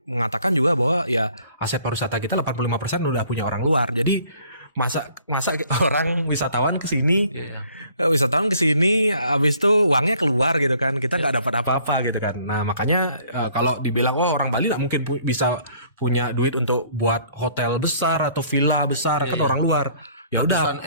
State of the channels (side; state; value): both; inverted; correlation -0.58